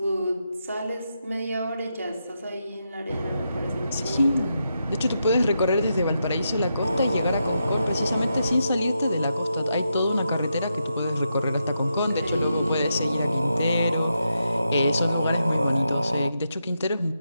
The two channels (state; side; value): inverted; both; correlation -0.84